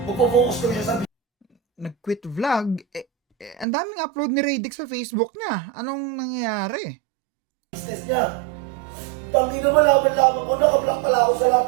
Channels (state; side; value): drops out; left; at 3.7 s